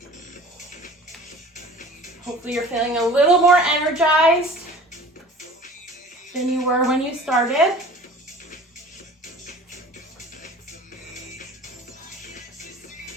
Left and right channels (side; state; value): both; normal; correlation 0.43